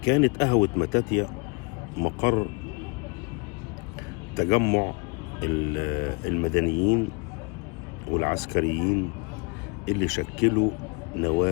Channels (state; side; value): quieter; right; 30.5 dB